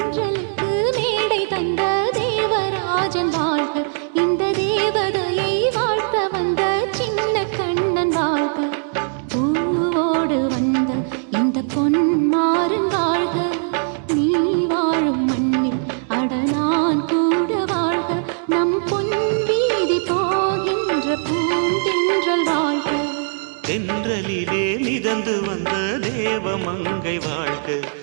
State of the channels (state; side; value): silent; left; digital silence